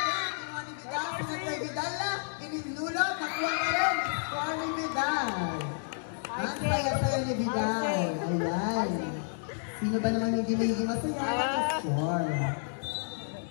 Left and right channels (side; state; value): right; silent; digital silence